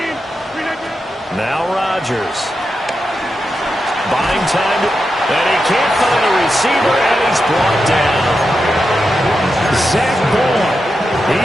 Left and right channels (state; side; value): normal; both; correlation 0.88